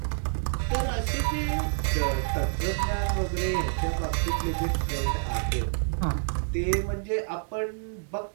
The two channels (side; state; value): left; silent; digital silence